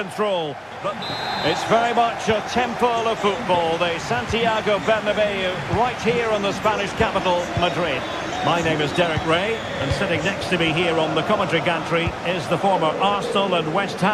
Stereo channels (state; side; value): identical; both; correlation 1.00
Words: But it's very much a temple of football. The Santiago Bernabeu, right here in the Spanish capital, Madrid. My name is Derek Ray, and sitting next to me here on the commentary gantry is the former Arsenal and West